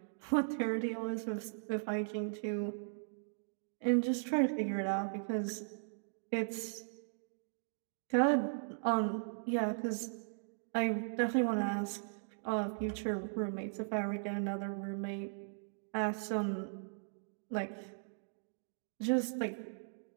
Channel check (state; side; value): silent; left; digital silence